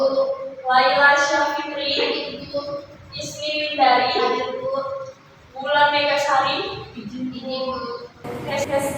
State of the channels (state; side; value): identical; both; correlation 1.00